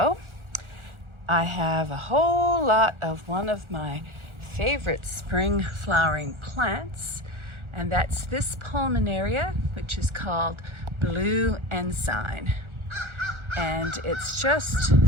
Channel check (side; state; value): left; late; 1.4 ms